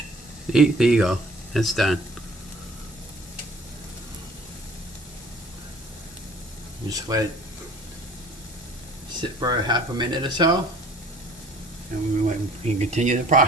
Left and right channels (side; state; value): both; normal; correlation 0.51